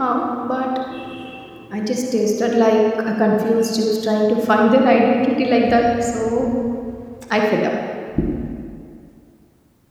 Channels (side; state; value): both; identical; correlation 1.00